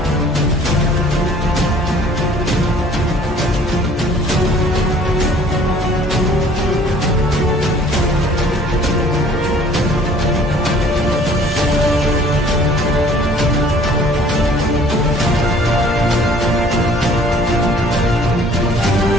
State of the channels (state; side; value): normal; both; correlation 0.54